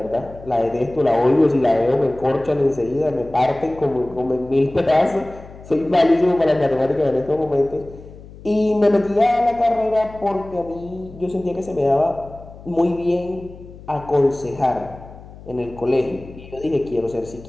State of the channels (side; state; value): left; noise; hum, 18 dB below the sound